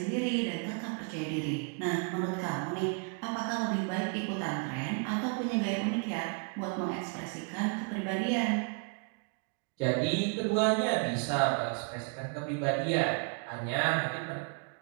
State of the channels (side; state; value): left; quieter; 37.6 dB